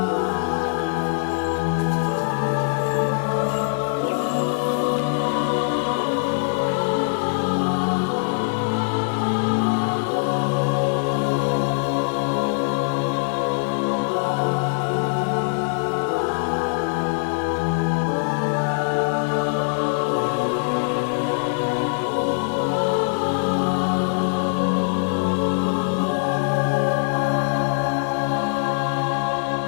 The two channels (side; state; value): right; silent; digital silence